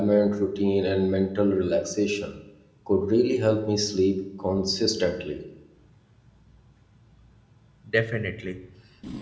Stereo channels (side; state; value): both; identical; correlation 1.00